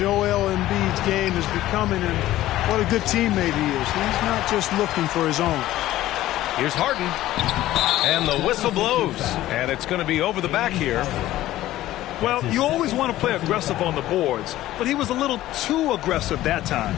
Embiid's game is becoming and what a good teammate he is. He's not just looking for his own. Here's Harden. And the whistle blows. And it's going to be over the back here. Well, you always want to play aggressive on the boards, but he was a little too aggressive that time.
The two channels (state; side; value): quieter; right; 14.9 dB